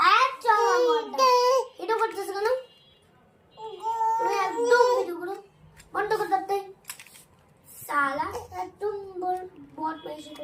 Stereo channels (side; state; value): both; identical; correlation 1.00